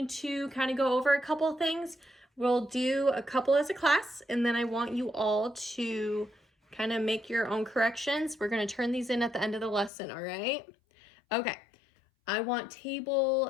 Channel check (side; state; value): right; drops out; at 9.9 s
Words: to kind of go over a couple things. We'll do a couple as a class, and then I want you all to kind of make your own corrections. We're going to turn these in at the end of the lesson, all right? Okay, I want